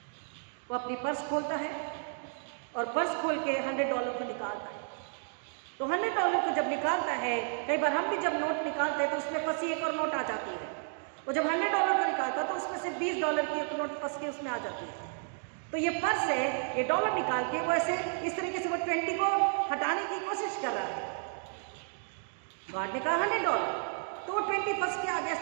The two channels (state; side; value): silent; left; 56 dB below the other